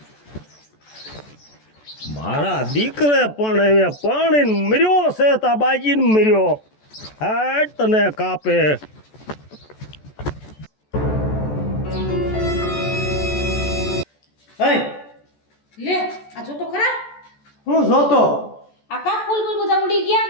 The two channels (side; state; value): right; late; 14 ms